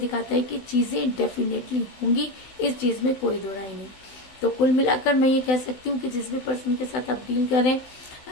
है कि चीजें डेफिनेटली होंगी, इस चीज में कोई दो राय नहीं। तो कुल मिलाकर मैं ये कह सकती हूँ कि जिस भी पर्सन के साथ आप डील करें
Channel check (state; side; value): late; right; 16 ms